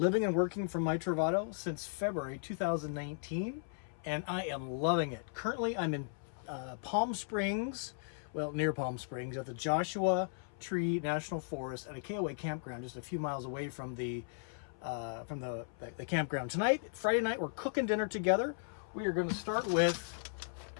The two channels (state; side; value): silent; right; 54 dB below the other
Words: and working from my Travato since February 2019, and I am loving it. Currently, I'm in Palm Springs, well, near Palm Springs, at the Joshua Tree National Forest at a KOA campground just a few miles away from the campground. Tonight, Friday night, we're cooking dinner together. We are going to start with